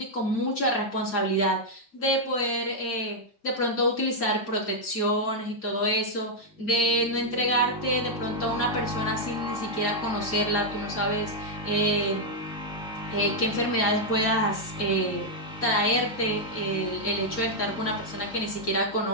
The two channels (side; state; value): both; normal; correlation -0.03